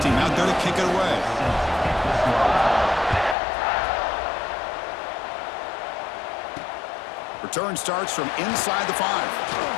team out there to kick it away. Return starts from inside the 5.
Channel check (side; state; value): right; drops out; at 3.4 s